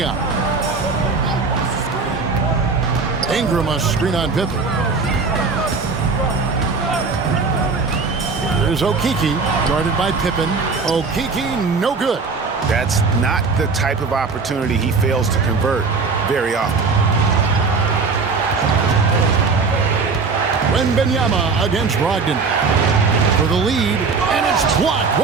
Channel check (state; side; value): quieter; left; 4.5 dB